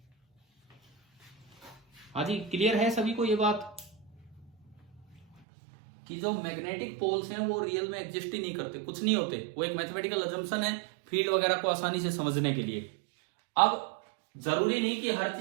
हाँ जी, क्लियर है सभी को ये बात कि जो मैग्नेटिक पोल्स हैं वो रियल में एग्जिस्ट ही नहीं करते, कुछ नहीं होते, वो एक मैथमेटिकल अजम्पशन है फील्ड वगैरह को आसानी से समझने के लिए। अब जरूरी नहीं कि हर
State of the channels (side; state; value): left; drops out; at 5.4 s